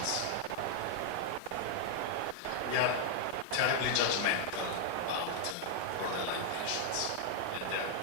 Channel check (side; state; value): both; different; correlation 0.00